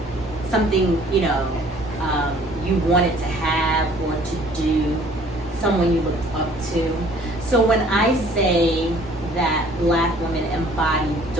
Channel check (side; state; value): both; normal; correlation 0.55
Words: something, you wanted to have or to do, someone you looked up to. So when I say that Black women embody